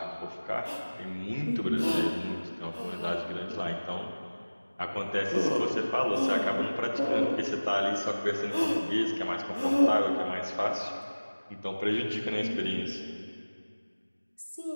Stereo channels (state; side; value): inverted; both; correlation -1.00